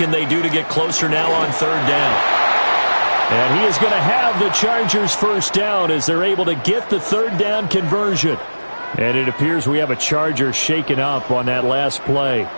they do to get closer now on 3rd down? And he is going to have the Chargers first down as they're able to get the 3rd down conversion. And it appears we have a Charger shaken up on that last play.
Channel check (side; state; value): both; inverted; correlation -1.00